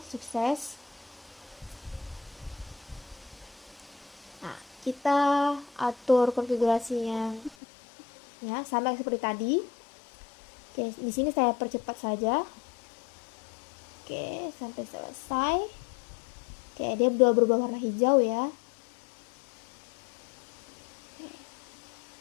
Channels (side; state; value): right; drops out; at 7.6 s